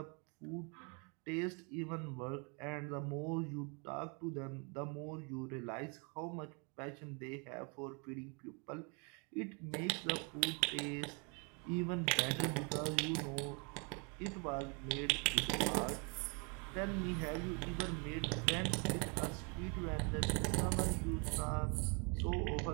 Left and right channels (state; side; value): quieter; left; 34.5 dB